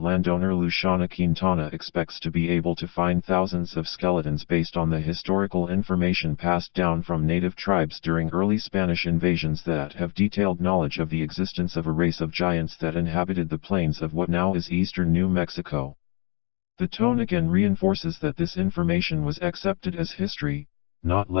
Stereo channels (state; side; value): quieter; right; 32.0 dB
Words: landowner Luciana Quintana expects to be able to find thousands of skeletons based on the historical information passed down from native tribes during early Spanish invasions that have detailed knowledge of the existence of a race of giants that inhabited the plains of what now is eastern New Mexico. The tone again reinforces that this information was accepted as history, not